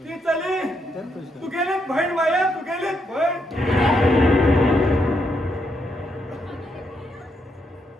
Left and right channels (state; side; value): normal; both; correlation 0.78